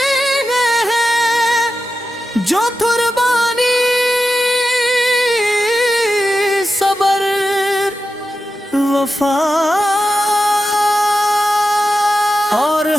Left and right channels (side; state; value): both; normal; correlation 0.91